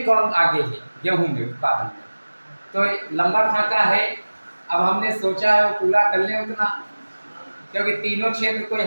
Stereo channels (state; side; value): inverted; both; correlation -1.00